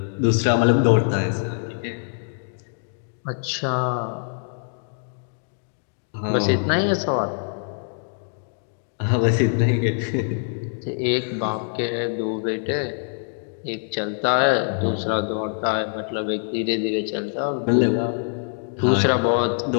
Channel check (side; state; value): right; silent; digital silence